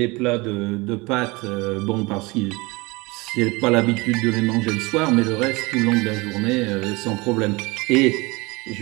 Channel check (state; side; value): quieter; left; 24.5 dB